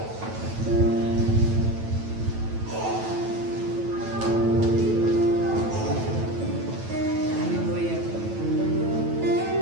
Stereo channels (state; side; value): late; left; 9.1 ms